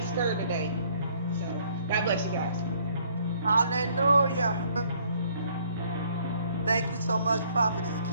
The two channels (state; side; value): inverted; both; correlation -0.63